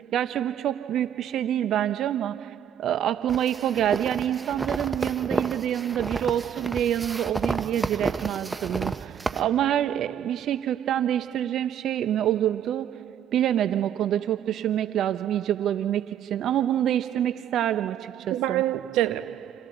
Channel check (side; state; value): left; quieter; 9.4 dB